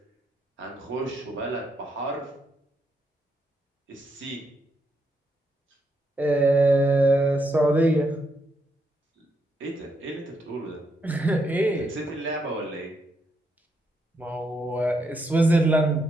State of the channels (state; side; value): normal; both; correlation 0.79